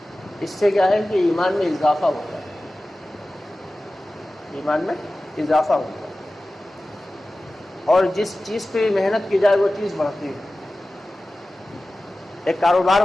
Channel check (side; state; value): both; normal; correlation 0.96